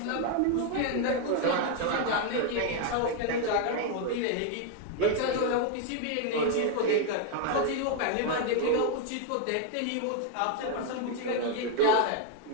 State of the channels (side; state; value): both; different; correlation 0.01